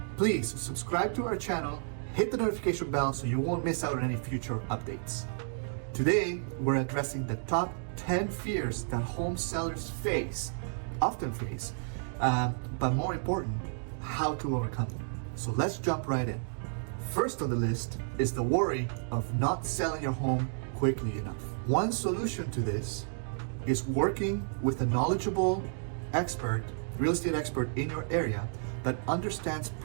please subscribe to our channel, hit the notification bell so you won't miss out on any future updates. Today, we're addressing the top 10 fears that home sellers often face, but more important, how to overcome them. So let's jump right in. First on the list is the worry of not selling your home quickly enough. One solution to this is working with a knowledgeable real estate expert in your area that understands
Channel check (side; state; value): left; silent; digital silence